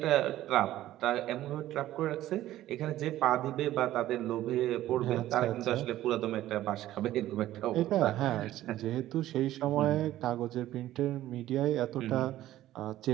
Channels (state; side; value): quieter; left; 14.2 dB